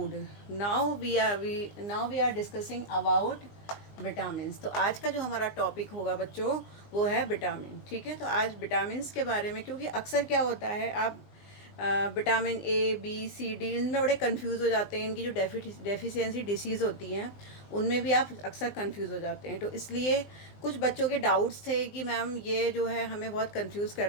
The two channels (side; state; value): right; late; 20 ms